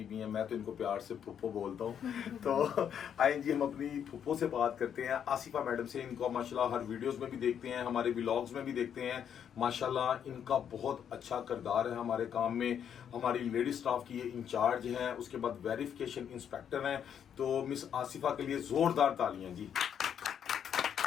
بھی ہیں. میں تو ان کو پیار سے پھپھو بولتا ہوں. تو آئیں جی ہم اپنی پھپھو سے بات کرتے ہیں, آصفہ میڈم سے. ان کو ماشاءاللہ ہر ویڈیوز میں بھی دیکھتے ہیں, ہمارے ولاگز میں بھی دیکھتے ہیں. ماشاءاللہ ان کا بہت اچھا کردار ہے ہمارے کام میں. ہماری لیڈی سٹاف کی یہ انچارج ہیں, اس کے بعد ویریفیکیشن انسپیکٹر ہیں. تو مس آصفہ کے لیے زوردار تالیاں جی.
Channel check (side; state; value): right; quieter; 8.6 dB